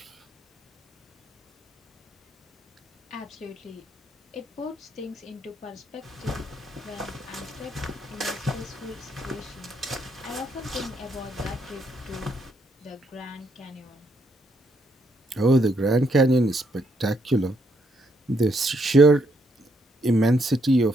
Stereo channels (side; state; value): both; normal; correlation 0.74